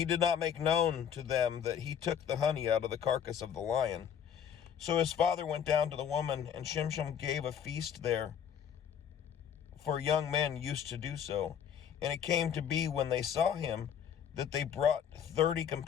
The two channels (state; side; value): quieter; right; 8.4 dB